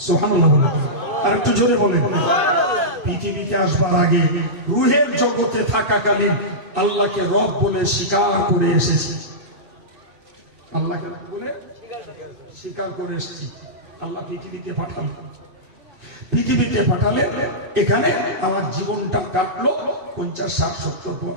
সুবহানাল্লাহ। আর একটু জোরে বলেন। পৃথিবীতে আসবার আগে রুহের জগতে থাকাকালীন আল্লাহকে রব বলে স্বীকার করে এসেছি। আল্লাহকে বলে স্বীকার করে এসেছি। আল্লাহ পৃথিবীতে পাঠালেন, পৃথিবীতে পাঠালে এখানে আমার জীবনটা কাটলো 50, 60, 70,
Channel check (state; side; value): late; left; 2.6 ms